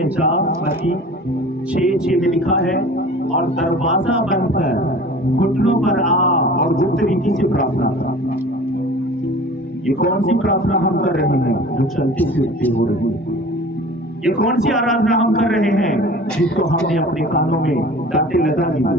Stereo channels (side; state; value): both; normal; correlation 0.42